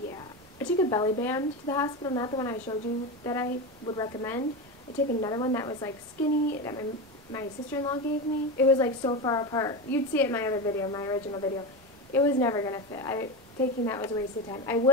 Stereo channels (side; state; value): both; normal; correlation 0.19